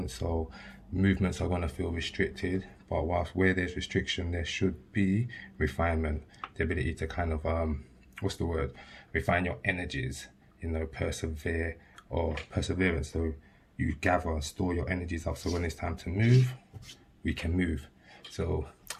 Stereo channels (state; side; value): identical; both; correlation 1.00